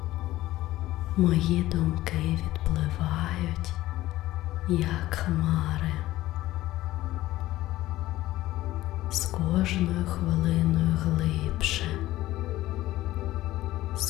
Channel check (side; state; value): right; quieter; 15.9 dB